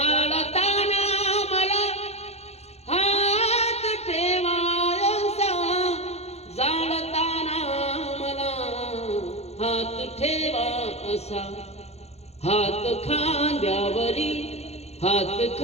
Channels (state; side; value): late; right; 0.31 ms